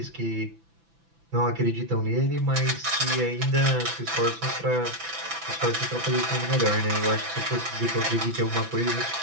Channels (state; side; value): late; left; 6.0 ms